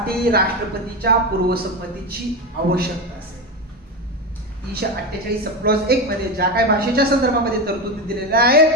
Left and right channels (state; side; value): normal; both; correlation 0.17